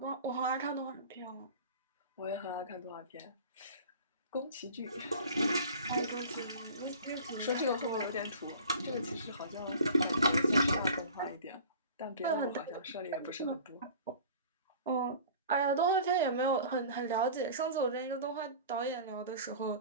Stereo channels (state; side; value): inverted; both; correlation -0.41